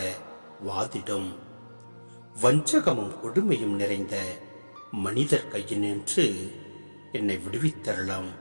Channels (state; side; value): inverted; both; correlation -1.00